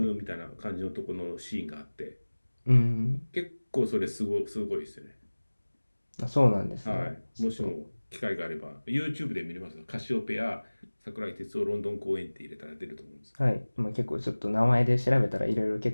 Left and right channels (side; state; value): both; inverted; correlation -1.00